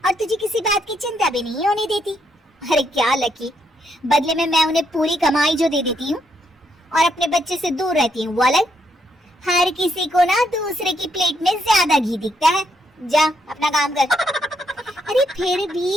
तुझे किसी बात की चिंता भी नहीं होने देती। अरे क्या लकी, बदले में मैं उन्हें पूरी कमाई जो दे देती हूँ और अपने बच्चे से दूर रहती हूँ। वो अलग। हर किसी को ना दूसरे की प्लेट में ज्यादा घी दिखता है। जा अपना काम कर। अरे फिर भी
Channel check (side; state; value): both; normal; correlation 0.76